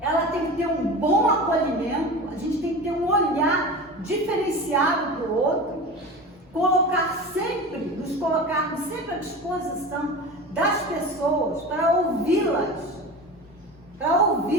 tem que ter um bom acolhimento, a gente tem que ter um olhar diferenciado para o outro, nos colocarmos sempre à disposição das pessoas para ouvi-las.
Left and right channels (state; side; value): normal; both; correlation 0.31